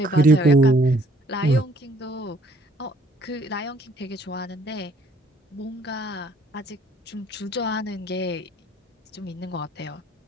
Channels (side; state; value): both; normal; correlation 0.61